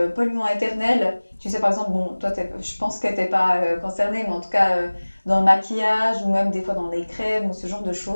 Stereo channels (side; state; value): both; inverted; correlation -1.00